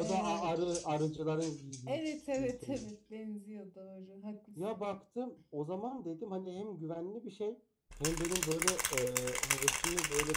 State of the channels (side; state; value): both; identical; correlation 1.00